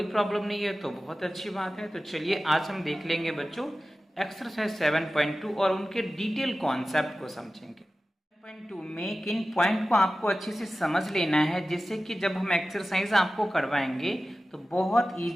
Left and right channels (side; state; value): both; normal; correlation 0.95